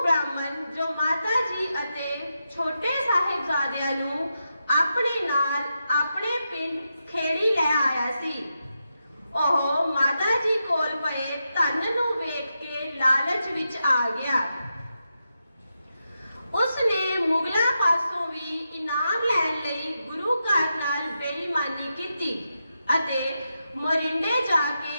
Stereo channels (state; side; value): inverted; both; correlation -0.87